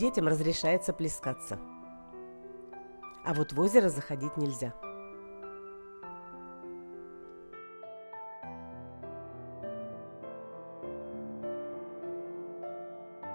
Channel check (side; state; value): both; inverted; correlation -1.00